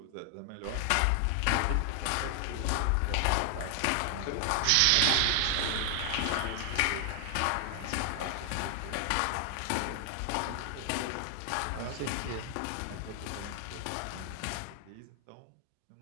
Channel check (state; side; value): different; both; correlation 0.00